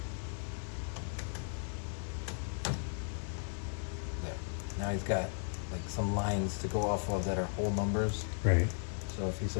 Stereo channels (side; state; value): right; silent; 54 dB below the other